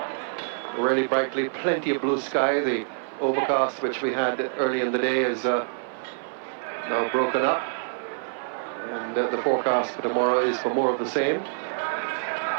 really brightly, plenty of blue sky. The overcast which we had early in the day is now broken up, and the forecast for tomorrow is for more of the same.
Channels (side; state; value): left; silent; 56 dB below the other